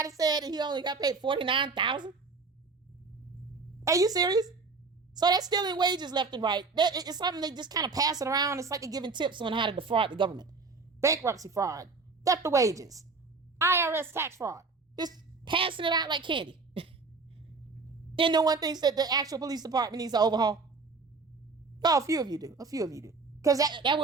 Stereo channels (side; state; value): left; quieter; 4.2 dB